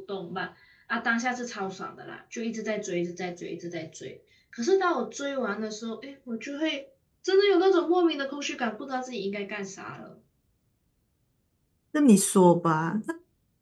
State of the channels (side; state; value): both; identical; correlation 1.00